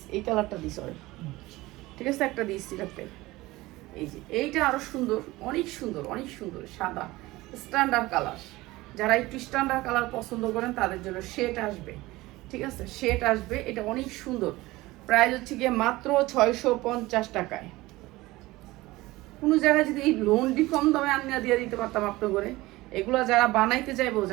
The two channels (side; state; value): left; quieter; 19.4 dB